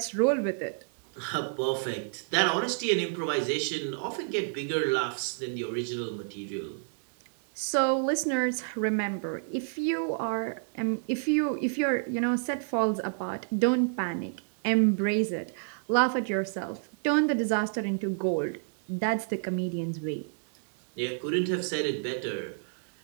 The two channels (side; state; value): left; silent; digital silence